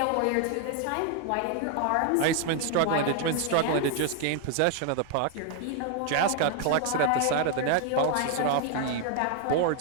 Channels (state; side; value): different; both; correlation 0.00